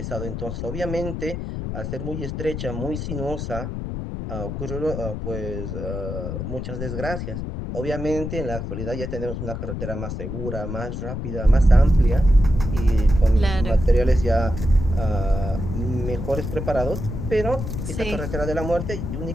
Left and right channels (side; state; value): left; noise; rumble, 5 dB below the sound